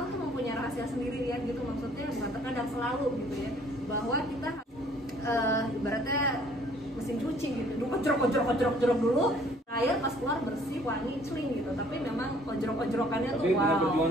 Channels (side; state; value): both; normal; correlation 0.58